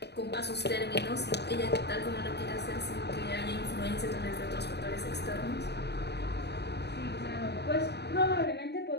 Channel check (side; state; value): right; late; 0.49 ms